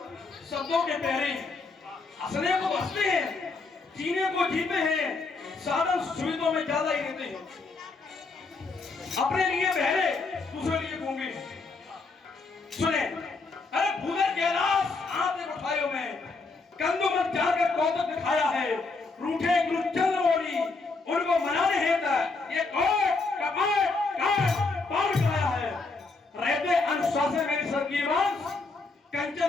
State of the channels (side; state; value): right; quieter; 3.9 dB